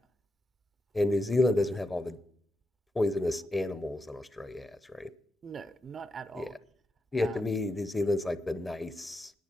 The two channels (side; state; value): both; normal; correlation 0.87